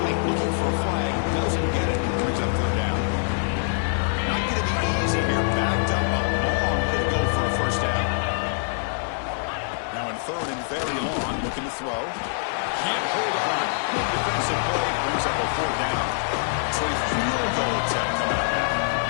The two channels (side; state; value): right; silent; 62 dB below the other